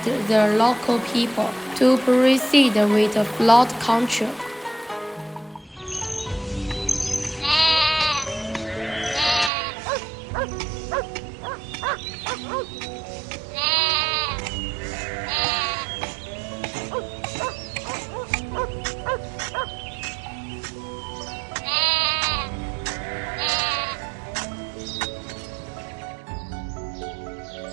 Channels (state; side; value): drops out; left; at 9.5 s